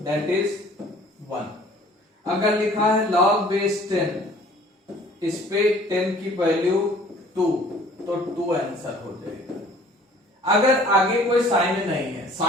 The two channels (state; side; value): normal; both; correlation 0.52